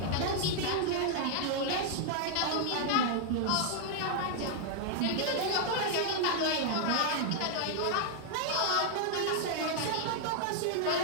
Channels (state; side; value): different; both; correlation 0.00